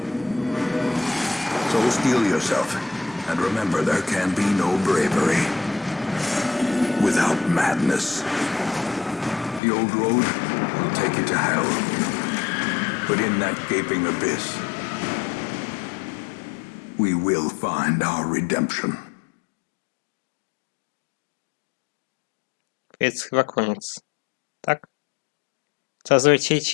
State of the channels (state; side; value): drops out; right; at 9.6 s